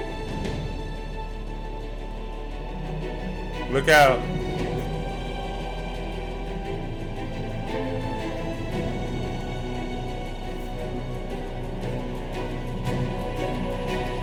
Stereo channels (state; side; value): identical; both; correlation 1.00